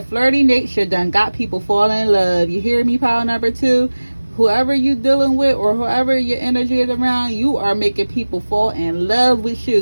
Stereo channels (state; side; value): inverted; both; correlation -1.00